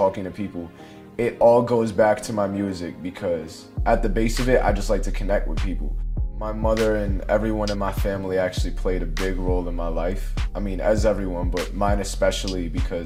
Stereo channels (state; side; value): identical; both; correlation 1.00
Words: to people, it all goes back to my music because at the base of it, I just like to connect with people. My mother and everyone in my family actually played a big role in my life. I mean, as everyone, but mine especially